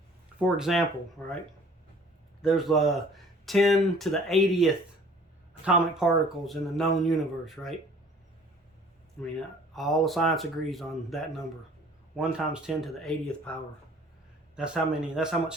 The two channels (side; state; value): both; normal; correlation 0.52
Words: for example, right, there's 10 to the 80th atomic particles in the known universe, right? I mean, all the science agrees on that number. 1 times 10 to the 80th power. That's how